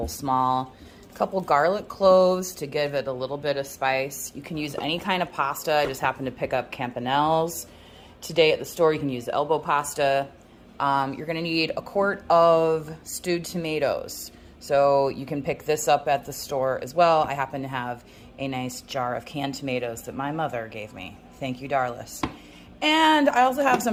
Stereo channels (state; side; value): identical; both; correlation 1.00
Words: small. A couple garlic cloves to give it a little bit of spice. You can use any kind of pasta. I just happened to pick up Campanelle's. Today at the store, you can use elbow pasta. You're gonna need a quart of stewed tomatoes. So you can pick this up at the store as well. I happen to have a nice jar of canned tomatoes that my mother gave me. Thank you, Darlis. And I also have